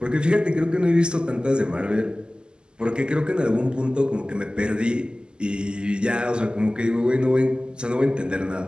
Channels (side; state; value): left; late; 0.047 ms